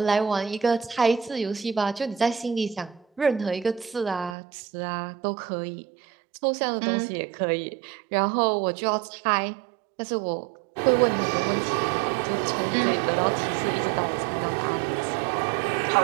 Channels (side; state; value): left; drops out; at 4.4 s